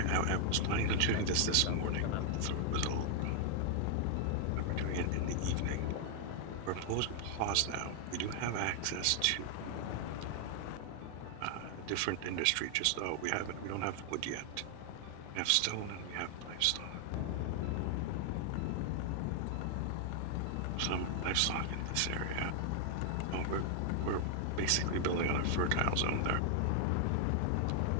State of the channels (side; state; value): both; different; correlation 0.00